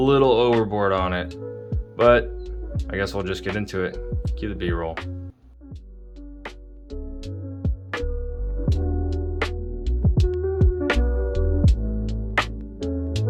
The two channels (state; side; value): identical; both; correlation 1.00